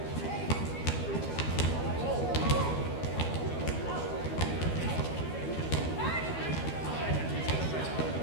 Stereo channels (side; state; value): right; late; 12 ms